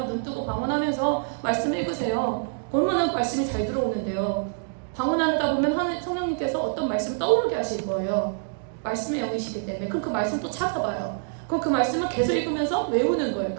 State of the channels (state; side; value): silent; left; digital silence